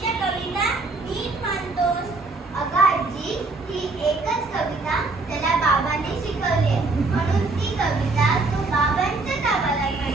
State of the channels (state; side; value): quieter; left; 3.5 dB